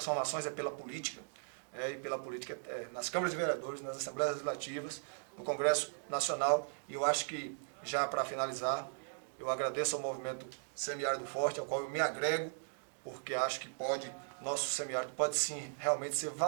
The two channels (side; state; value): left; silent; digital silence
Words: pela política, e pela política nas câmaras de vereadores, nas Assembleias Legislativas, no Congresso Nacional. E eu acho que, já para finalizar, eu agradeço ao movimento Semiárido Forte, ao qual eu me agrego, porque acho que nosso semiárido pode sim realmente ser